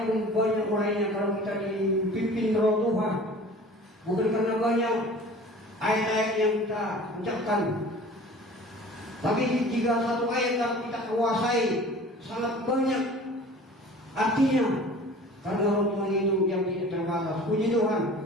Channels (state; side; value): normal; both; correlation 0.44